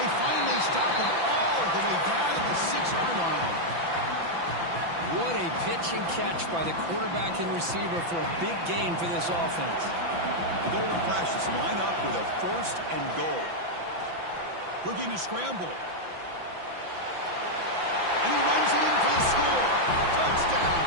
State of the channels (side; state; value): left; late; 5.9 ms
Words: They finally stop him all the way down to the 6-yard line. What a pitch and catch by the quarterback and receiver for a big gain for this offense. The Golden Flashes line up with a 1st and goal. Looking to scramble. And he runs it in for the score. Touchdown,